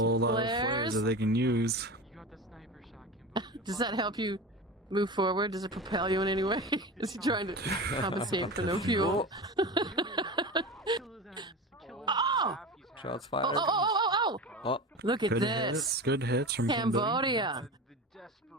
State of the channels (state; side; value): normal; both; correlation 0.28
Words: lot of flares that they can use. Does that help you move forward? Does it propel you in any way? Is he trying to compensate for no fuel? Oh! Shots fired. Oh! Look at Good this. hits. Good hits from Cambodia.